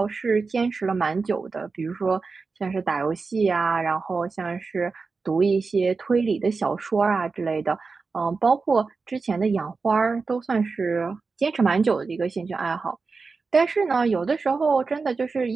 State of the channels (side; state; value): left; quieter; 4.4 dB